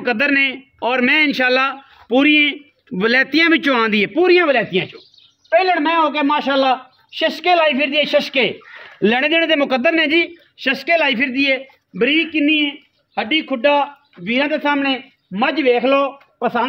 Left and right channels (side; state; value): both; identical; correlation 1.00